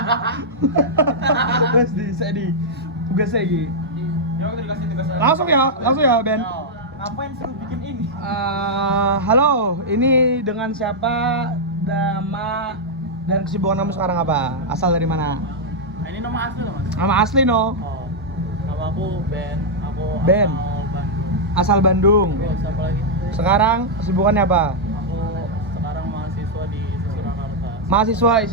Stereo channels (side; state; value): both; normal; correlation -0.06